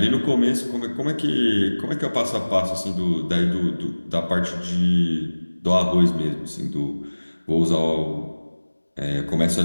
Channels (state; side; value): inverted; both; correlation -1.00